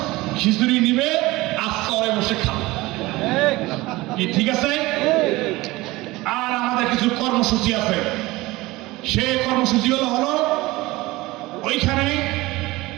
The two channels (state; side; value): quieter; left; 20.2 dB